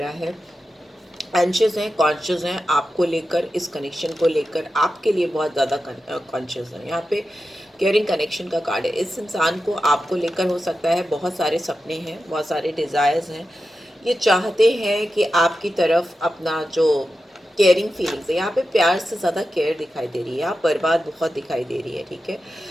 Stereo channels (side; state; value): both; normal; correlation 0.91